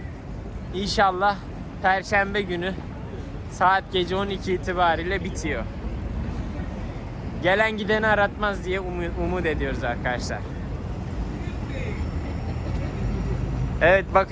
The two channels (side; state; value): both; identical; correlation 1.00